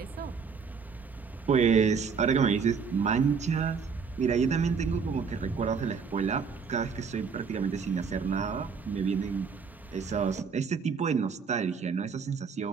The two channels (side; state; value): left; quieter; 5.8 dB